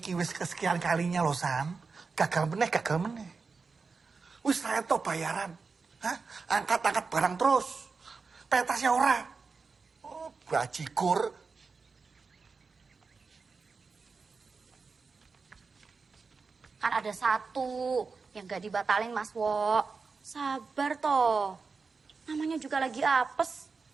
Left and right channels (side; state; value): left; quieter; 4.7 dB